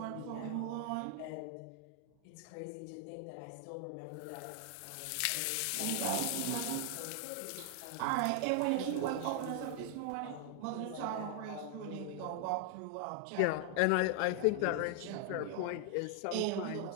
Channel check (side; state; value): both; different; correlation 0.00